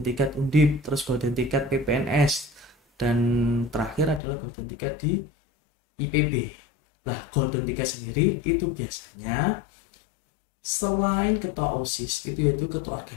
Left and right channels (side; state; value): right; drops out; at 4.2 s